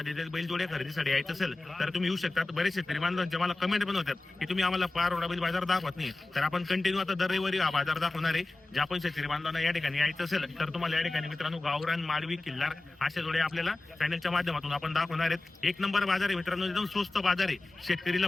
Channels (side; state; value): right; quieter; 3.0 dB